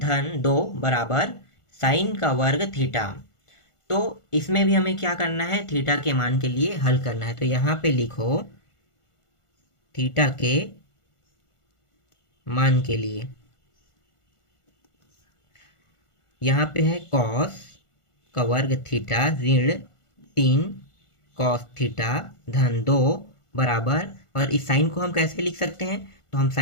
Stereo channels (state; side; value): late; right; 1.4 ms